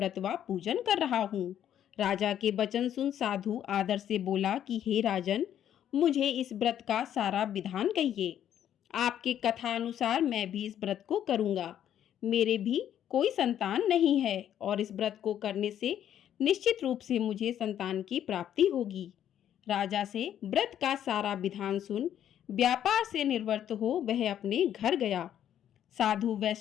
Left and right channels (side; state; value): right; quieter; 10.4 dB